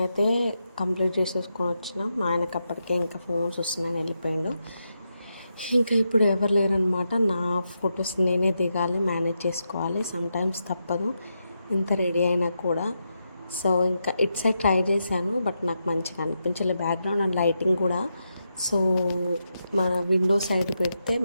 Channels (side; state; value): both; inverted; correlation -0.85